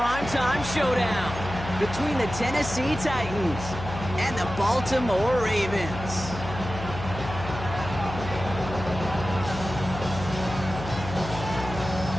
showdown between the Tennessee Titans and the Baltimore Ravens.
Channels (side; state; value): left; noise; hum, 9 dB below the sound